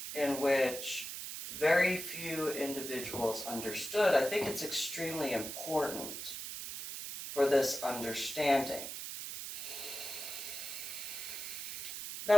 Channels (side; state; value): right; noise; hiss, 7 dB below the sound